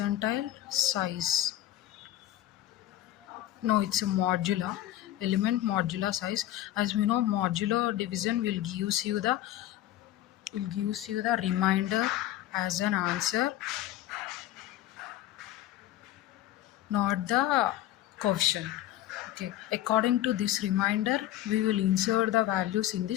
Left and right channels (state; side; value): quieter; right; 13.4 dB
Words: size. No, it's a modular element modular size. As we know, modular division will gives you the remainder as an answer, not the coefficient. Okay, according to this remainder we will insert the values in